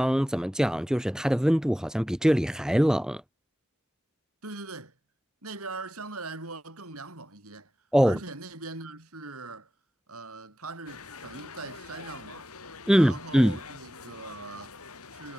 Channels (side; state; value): both; normal; correlation 0.95